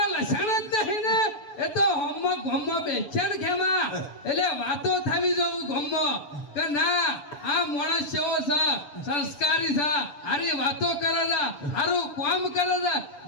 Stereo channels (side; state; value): right; late; 7.0 ms